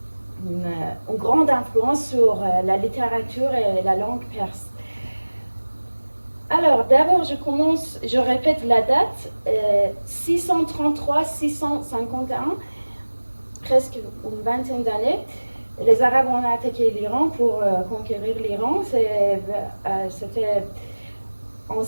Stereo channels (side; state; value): both; inverted; correlation -1.00